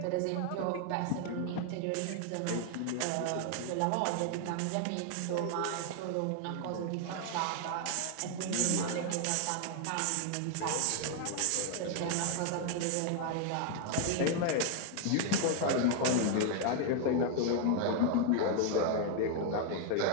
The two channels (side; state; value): both; different; correlation 0.00